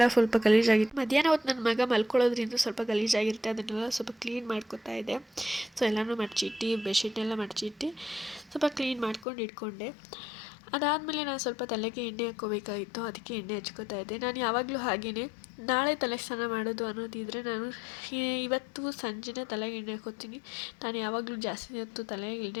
ಸ್ವಲ್ಪ ಗಲೀಜಾಗಿತ್ತು. ಮಧ್ಯಾಹ್ನ ಹೊತ್ತು ನನ್ನ ಮಗ ಮಲ್ಕೊಳ್ಳೋದ್ರಿಂದ ಸ್ವಲ್ಪ ಗಲೀಜಾಗಿರುತ್ತೆ. ಅದನ್ನೆಲ್ಲ ಸ್ವಲ್ಪ ಕ್ಲೀನ್ ಮಾಡ್ಕೊತಾ ಇದೆ. ಸೊ ಎಲ್ಲನೂ ಮಡಚಿಟ್ಟು ಬೆಡ್ಶೀಟ್ನೆಲ್ಲ ಮಡಚಿಟ್ಟು ಸ್ವಲ್ಪ ಕ್ಲೀನ್ ಮಾಡ್ಕೊಂಡು ಇಟ್ಕೊಂಡೆ. ಅದಾದಮೇಲೆ ನಾನು ಸ್ವಲ್ಪ ತಲೆಗೆ ಎಣ್ಣೆ ಹಾಕ್ಕೋಬೇಕಾಗಿತ್ತು. ಅದಕ್ಕೆ ಎಣ್ಣೆ ಹಚ್ಕೋತಾ ಇದ್ದೆ. ನಾನು ಯಾವಾಗಲೂ ಹಾಗೆಯೇ ನಾಳೆ ತಲೆ ಸ್ನಾನ ಮಾಡೋದು ಅನ್ನೋದಿದ್ದರೆ ನಾನು ಇವತ್ತು ಸಂಜೆನೇ ತಲೆಗೆ ಎಣ್ಣೆ ಹಾಕ್ಕೋತೀನಿ. ನಾನು ಯಾವಾಗಲೂ ಜಾಸ್ತಿ ಹೊತ್ತು ತಲೆಗೆ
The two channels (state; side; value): drops out; right; at 9.2 s